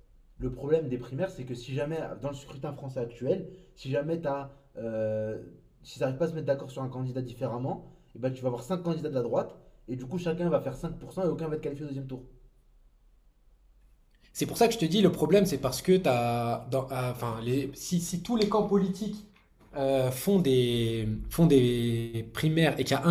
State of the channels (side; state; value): both; identical; correlation 1.00